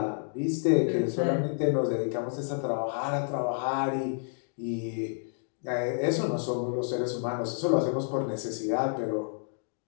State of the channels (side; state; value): right; silent; digital silence